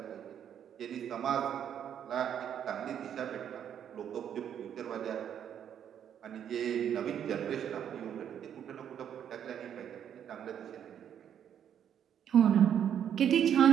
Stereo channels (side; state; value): left; quieter; 9.2 dB